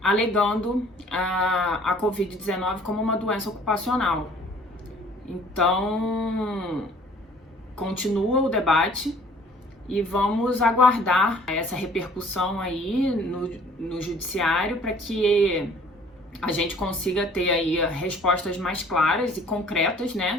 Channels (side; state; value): both; normal; correlation 0.54